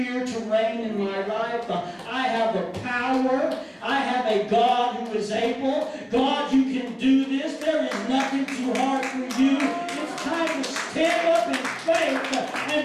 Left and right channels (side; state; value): both; identical; correlation 1.00